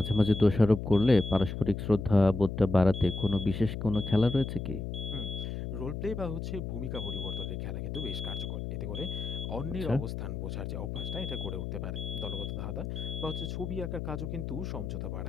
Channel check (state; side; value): noise; left; hum, 5 dB below the sound